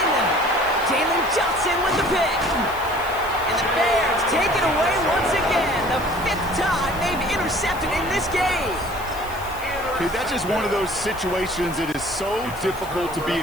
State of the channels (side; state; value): left; noise; hiss, 17 dB below the sound